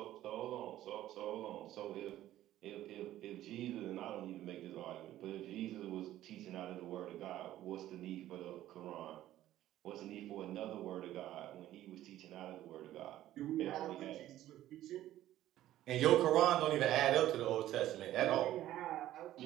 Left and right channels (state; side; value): quieter; left; 13.6 dB